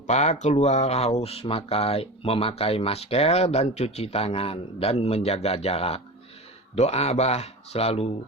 keluar harus memakai masker dan cuci tangan dan menjaga jarak. Doa Abah selalu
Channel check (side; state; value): both; normal; correlation 0.29